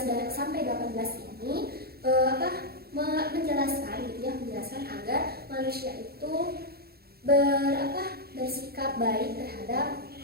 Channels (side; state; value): left; late; 0.45 ms